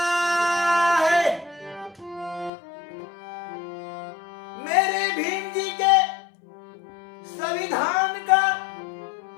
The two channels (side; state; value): right; drops out; at 2.5 s